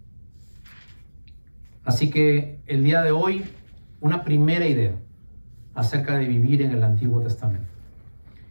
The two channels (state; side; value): inverted; both; correlation -1.00